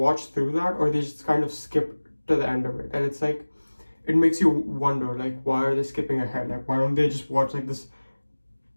through that or they just kind of skip to the end of it, and it's like it makes you wonder, like, why are they skipping ahead? Like, why don't they just watch like this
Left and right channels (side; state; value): both; inverted; correlation -1.00